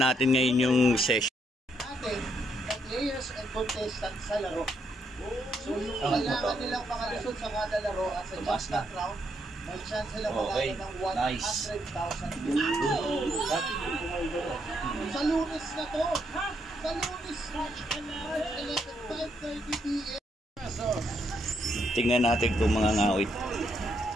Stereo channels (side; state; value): both; normal; correlation 0.76